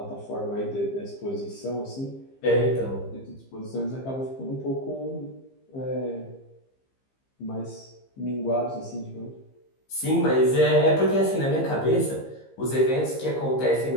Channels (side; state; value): right; late; 15 ms